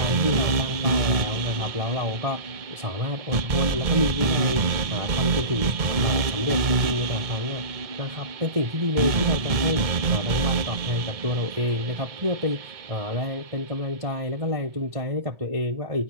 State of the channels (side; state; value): left; late; 1.7 ms